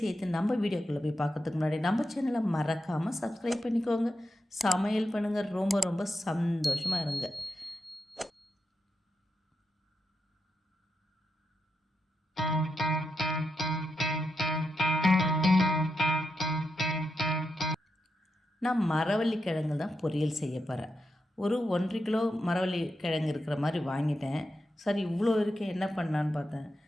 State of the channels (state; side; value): normal; both; correlation 0.86